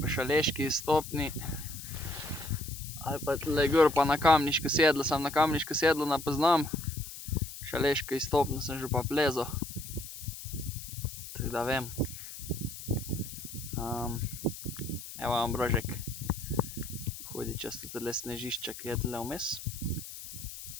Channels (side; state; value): left; noise; hiss, 11 dB below the sound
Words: po Šaleški izstopni, ali pa tule gor pa na Kamniško sedlo. Sam na Kamniško sedlo ne poznam, Šaleško izstopno sem že pa plezal. Tako da vem. Evo Ambrožek. Hodi čez tole snežišče, ki je tule vmes.